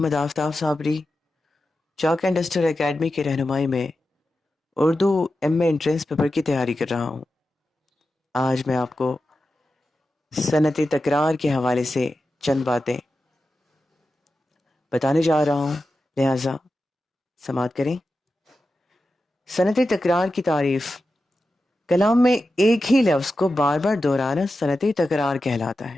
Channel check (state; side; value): normal; both; correlation 0.91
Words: آفتاب صابری چاک اینڈ ڈسٹر اکیڈمی کی رہنمائی میں اردو ایم اے انٹرنس پیپر کی تیاری کر رہا ہوں۔ آج میں آپ کو صنعت تکرار کے حوالے سے چند باتیں بتانے جا رہا ہوں، لہٰذا سماعت کریں۔ صنعت تکرار کی تعریف: کلام میں ایک ہی لفظ کو بار بار دہرانا صنعت تکرار کہلاتا